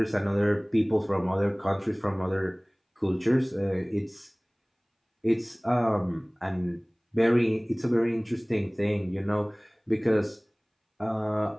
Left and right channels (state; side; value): identical; both; correlation 1.00